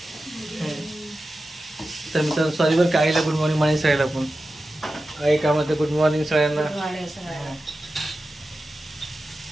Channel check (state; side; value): normal; both; correlation 0.93